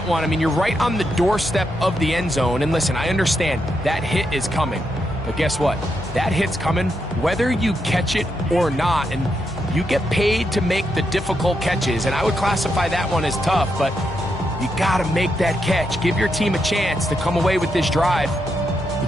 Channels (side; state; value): left; noise; hum, 16 dB below the sound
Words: one. I mean, you're right on the doorstep of the end zone. And listen, I understand that hit is coming. But guess what? That hit's coming whether you catch it or not. And you get paid to make the difficult catches. And I would classify that one as tough. But you got to make that catch. Give your team a chance to come away with this drive